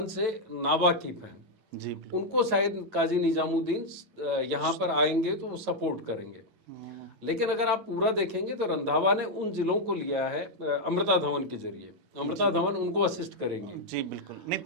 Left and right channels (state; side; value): late; left; 11 ms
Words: से नावाकिफ हैं जी, उनको शायद काजी निजामुद्दीन यहाँ पर आएंगे तो वो सपोर्ट करेंगे, लेकिन अगर आप पूरा देखेंगे तो रंधावा ने उन जिलों को लिया है अमृता धवन के जरिए। अमृता धवन उनको असिस्ट करेंगे जी, बिल्कुल। नहीं,